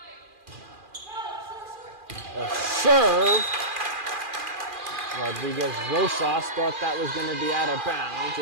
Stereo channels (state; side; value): late; left; 2.4 ms